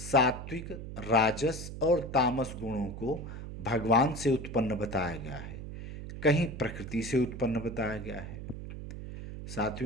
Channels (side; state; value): right; noise; hum, 9 dB below the sound